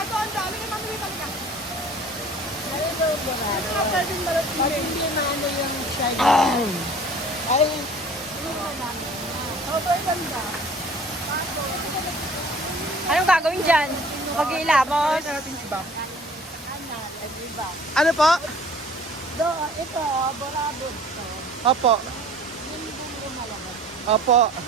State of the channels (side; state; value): both; normal; correlation 0.49